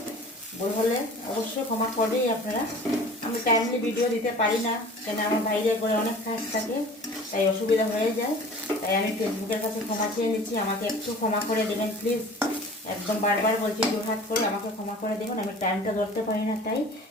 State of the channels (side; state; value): both; normal; correlation 0.43